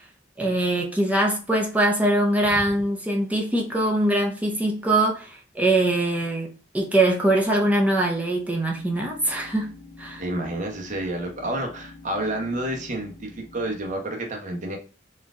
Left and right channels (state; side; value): normal; both; correlation 0.57